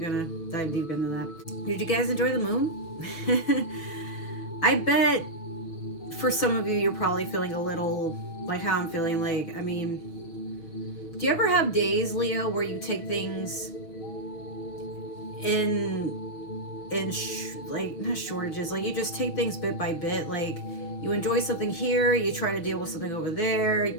going to dive deep into that. Did you guys enjoy the moon? I bet for some of you, you're probably feeling a little like how I'm feeling. Like, I mean, do you ever have days, Leo, where you take things like not shortages, like you just take things bit by bit, like you enjoy something here, you try to deal with something over there,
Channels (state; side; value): late; right; 6.0 ms